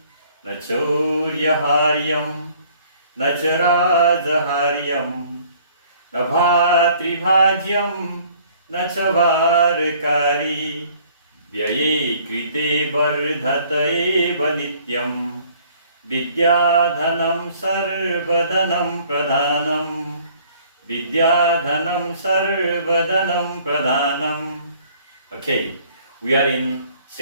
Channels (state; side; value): inverted; both; correlation -0.57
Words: Nachoryaharyam, Nacharajaharyam, Nabhatribhagyam, Nachavarkari, Vyaye Krite Vardhataye Vanityam, Vidyadhanam Sarvadhanam Pradhanam, Vidyadhanam Sarvadhanam Pradhanam. Okay, we are in